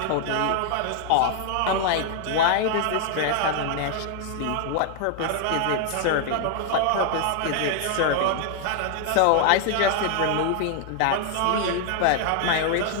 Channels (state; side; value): different; both; correlation 0.00